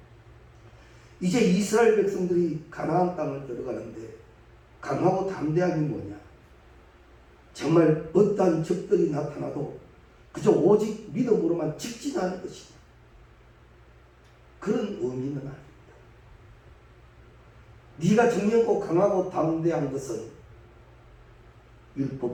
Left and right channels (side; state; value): both; identical; correlation 1.00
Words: 이제 이스라엘 백성들이 가나안 땅을 들어가는데 강하고 담대함이 뭐냐? 정말 어떠한 적들이 나타나도 그저 오직 믿음으로만 직진하는 것이다. 그런 의미는 아닙니다. 네가 정령고 강하고 담대한 것은